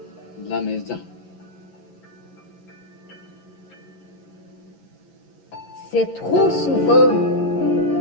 La Maison. C'est trop souvent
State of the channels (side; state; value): right; late; 11 ms